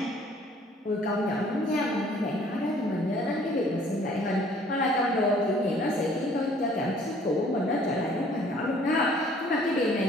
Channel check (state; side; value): normal; both; correlation 0.57